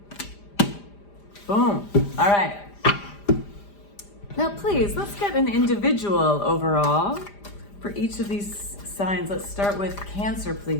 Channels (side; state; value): right; late; 5.0 ms